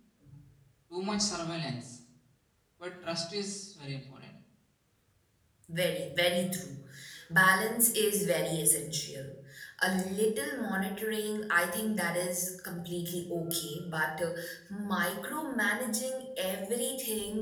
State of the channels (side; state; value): both; identical; correlation 1.00